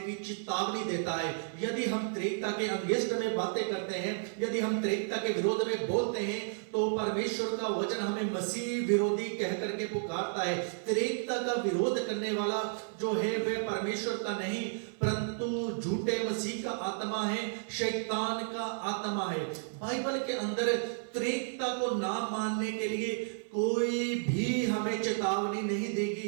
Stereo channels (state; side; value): silent; left; 56 dB below the other